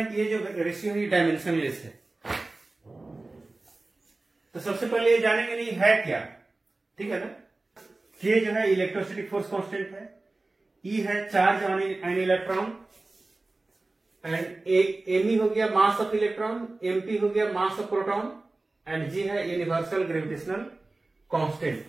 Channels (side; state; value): left; quieter; 3.2 dB